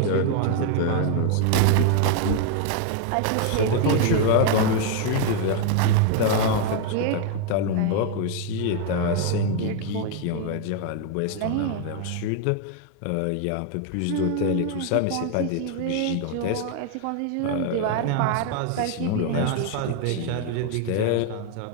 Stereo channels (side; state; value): both; different; correlation 0.00